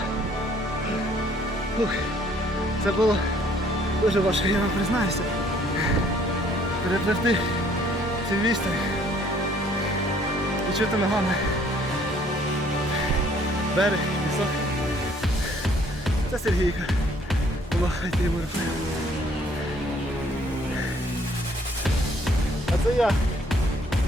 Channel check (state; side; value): normal; both; correlation 0.61